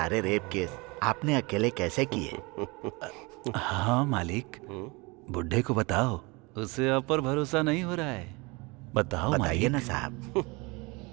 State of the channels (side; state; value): left; quieter; 26.6 dB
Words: रेप केस आपने अकेले कैसे किए? हाँ मालिक, बुड्ढे को बताओ, उसे आप पर भरोसा नहीं हो रहा है। बताओ बताइए मालिक। ना साहब।